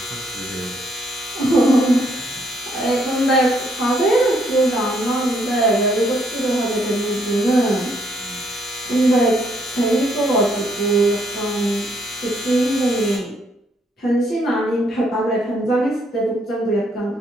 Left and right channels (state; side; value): normal; both; correlation 0.70